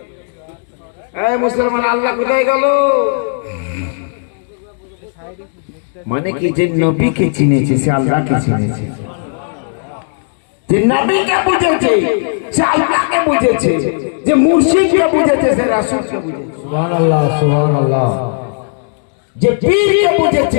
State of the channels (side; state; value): right; silent; digital silence